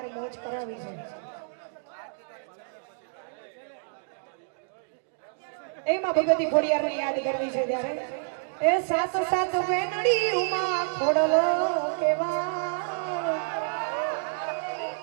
મોજ કરાવી છે. એમાં ભગવતી ખોડિયારને યાદ કરવી છે ત્યારે એ સાત સાત બેનડી ઉમા ખોડલ કેવા,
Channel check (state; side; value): silent; left; digital silence